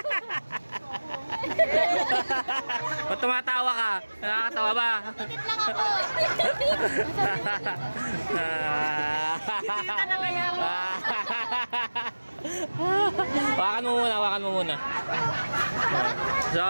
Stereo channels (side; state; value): both; inverted; correlation -1.00